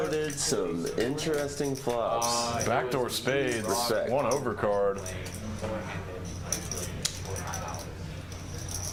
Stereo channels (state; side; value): identical; both; correlation 1.00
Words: some interesting flops. Backdoor spades. Respect. 1 overcard.